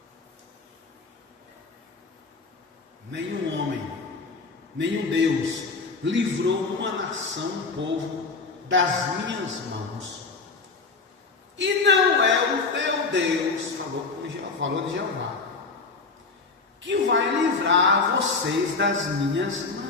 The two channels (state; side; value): quieter; right; 4.2 dB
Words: homem, nenhum Deus livrou uma nação, um povo, das minhas mãos. E não é o teu Deus, falou de Jeová, que vai livrar vocês das minhas